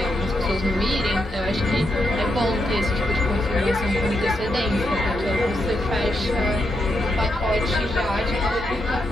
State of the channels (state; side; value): normal; both; correlation 0.82